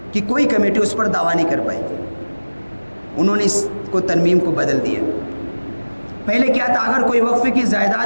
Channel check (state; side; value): inverted; both; correlation -1.00